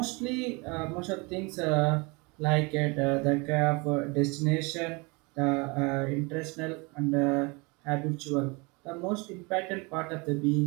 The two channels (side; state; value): left; quieter; 28.3 dB